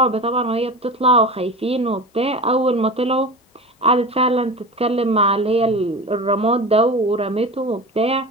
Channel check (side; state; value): both; normal; correlation 0.29